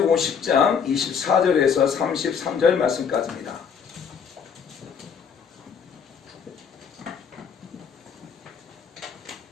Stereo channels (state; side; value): quieter; right; 6.8 dB